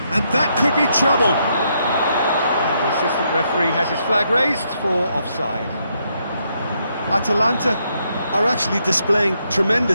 And that could be trouble. And the assistant referee has his flag raised for offside. Atalanta are actually displaying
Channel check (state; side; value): inverted; both; correlation -0.77